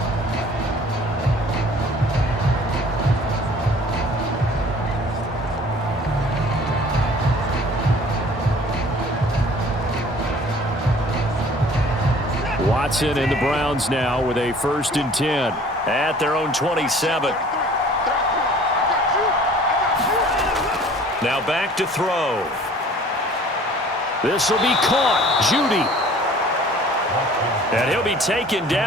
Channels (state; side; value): normal; both; correlation 0.50